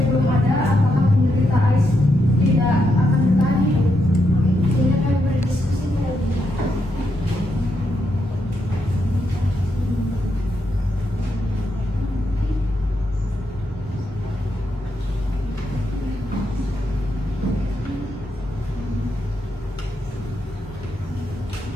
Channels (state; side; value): normal; both; correlation 0.81